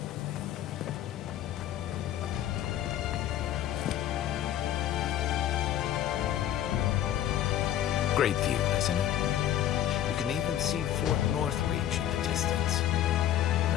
Great view, isn't it? You can even see Fort Northreach in the distance.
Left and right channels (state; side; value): quieter; right; 11.5 dB